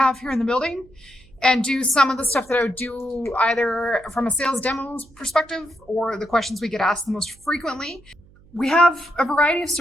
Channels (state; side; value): noise; right; hum, 27 dB below the sound